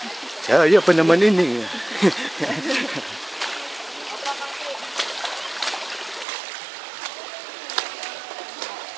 Kaya pa naman ini.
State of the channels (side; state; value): left; drops out; at 6.2 s